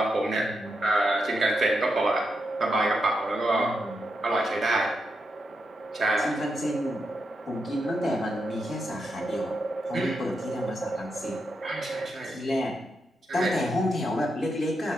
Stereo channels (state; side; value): normal; both; correlation 0.84